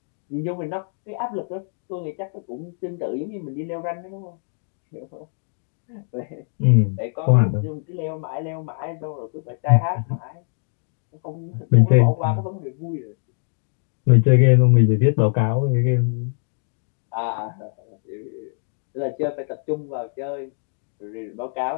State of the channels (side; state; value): right; silent; 63 dB below the other